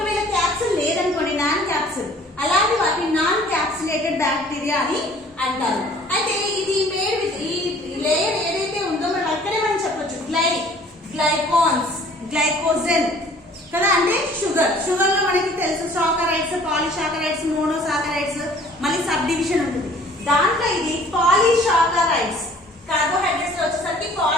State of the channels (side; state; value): both; normal; correlation 0.53